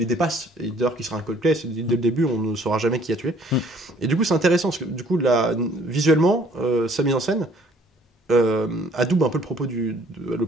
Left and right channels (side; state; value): both; normal; correlation 0.58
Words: dépasse, et d'ailleurs qui sera un cold-play, dès le début on ne saura jamais qui a tué. Et du coup c'est intéressant, parce que du coup visuellement, sa mise en scène adoube un peu le